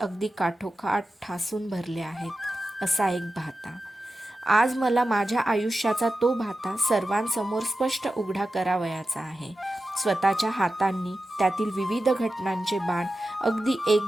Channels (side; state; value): both; normal; correlation 0.92